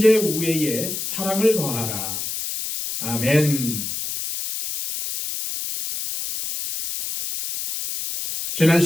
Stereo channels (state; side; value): noise; left; hiss, 5 dB below the sound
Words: 우애에 사랑을 더하라. 아멘. 지난